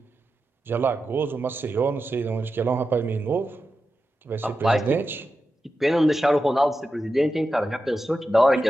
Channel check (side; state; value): both; normal; correlation 0.90